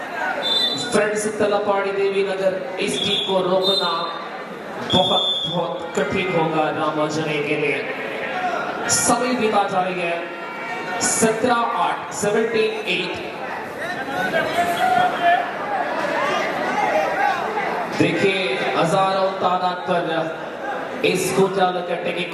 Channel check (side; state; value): both; identical; correlation 1.00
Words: फ्रेंड्स तलपाड़ी देवी नगर इस टीम को रोकना बहुत बहुत कठिन होगा रामाजने के लिए. समय बीता जा रही है. 17-8 17-8 देखिए हजारों तादाद पर इस गोजाल कट्टे के